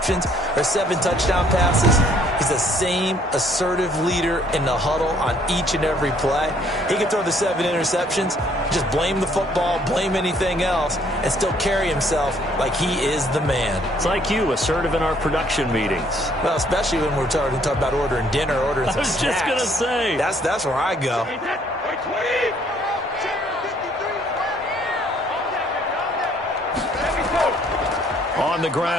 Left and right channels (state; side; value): normal; both; correlation 0.63